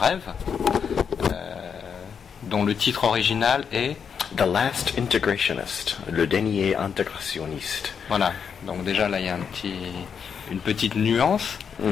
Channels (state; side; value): quieter; right; 6.9 dB